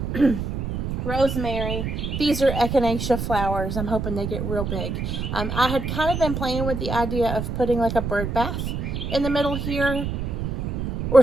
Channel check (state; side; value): noise; right; rumble, 3 dB below the sound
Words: Rosemary. These are echinacea flowers. I'm hoping they get real big. I had kind of been playing with the idea of putting like a bird bath in the middle here or